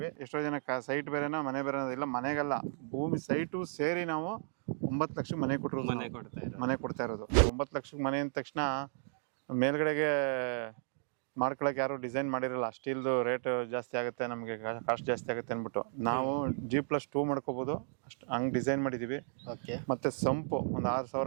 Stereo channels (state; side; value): silent; left; digital silence